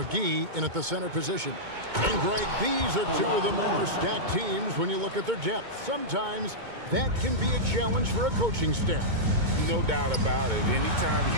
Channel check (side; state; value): left; late; 2.2 ms